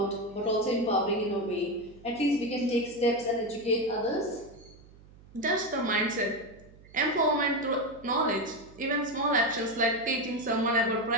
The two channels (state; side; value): noise; right; hum, 23 dB below the sound